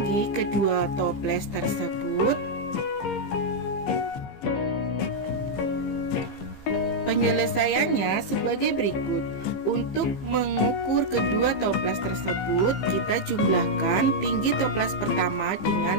kedua toples tersebut? Penyelesaiannya sebagai berikut. Untuk mengukur kedua toples tersebut, kita jumlahkan tinggi toples pertama dengan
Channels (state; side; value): late; right; 15 ms